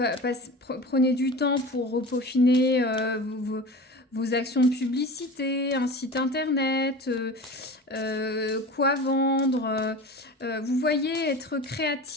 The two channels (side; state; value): both; normal; correlation 0.33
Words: du temps pour peaufiner vos actions de publicité, un site internet, quoi vendre. Vous voyez, être